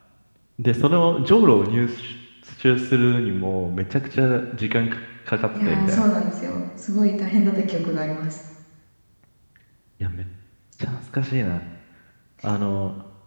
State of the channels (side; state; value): both; inverted; correlation -1.00